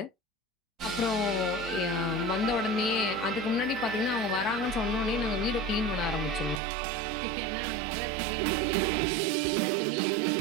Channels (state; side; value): drops out; left; at 6.6 s